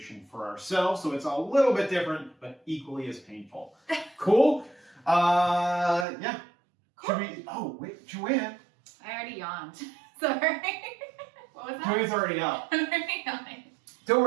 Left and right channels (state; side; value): drops out; left; at 6.1 s